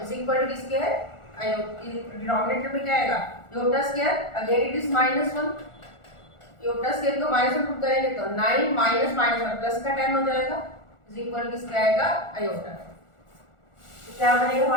is equal to किसके है डिनोमिनेटर में क्या आएगा iota square again it is minus 1। Iota square को माइनस 1 पुट करेंगे तो 9 माइनस माइनस 1 प्लस का 10 हो जाएगा इज इक्वल टू किसका आएगा आयोटा। तो क्या बनेगा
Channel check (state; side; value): late; right; 1.4 ms